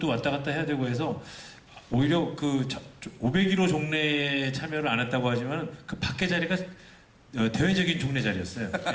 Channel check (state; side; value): identical; both; correlation 1.00